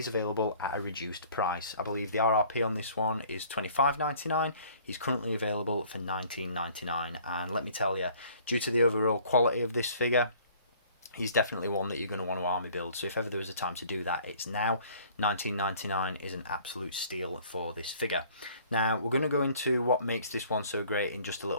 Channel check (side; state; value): both; inverted; correlation -0.54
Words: available at a reduced price. I believe the RRP on this one is $25.99. He's currently available for $19.99, and let me tell you, due to the overall quality of this figure, he's definitely one that you're going to want to army build. So if ever there was a time to do that, it's now. $19.99 is an absolute steal for this figure. Now, we're going to go into what makes this one so great in just a